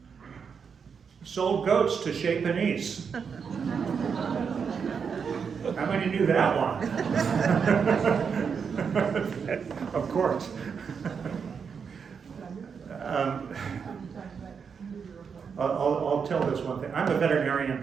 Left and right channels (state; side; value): quieter; left; 6.3 dB